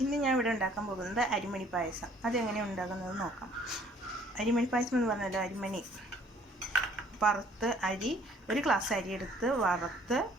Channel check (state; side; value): normal; both; correlation 0.58